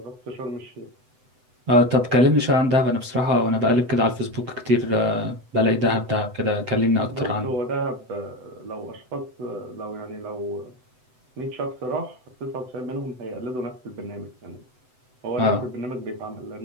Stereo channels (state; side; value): late; left; 7.9 ms